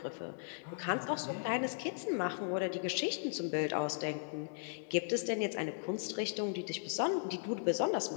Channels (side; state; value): right; silent; digital silence